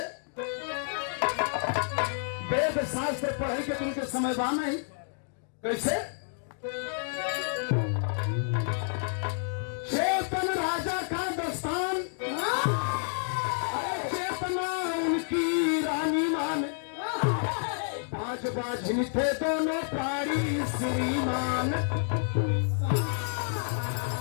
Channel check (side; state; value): right; silent; digital silence